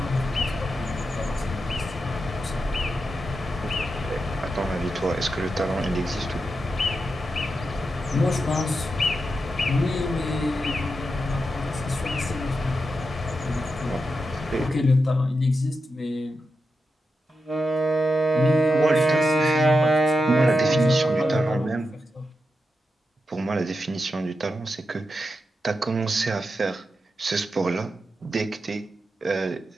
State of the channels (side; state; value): both; normal; correlation 0.88